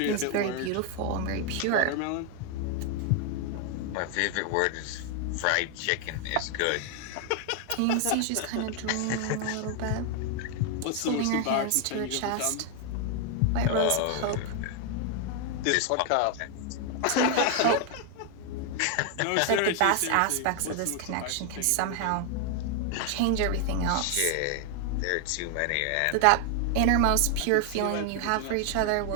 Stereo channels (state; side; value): different; both; correlation 0.00